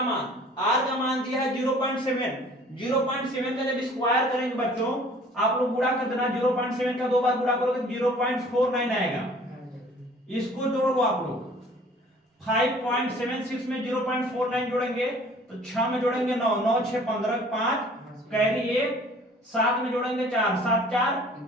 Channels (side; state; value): both; normal; correlation 0.51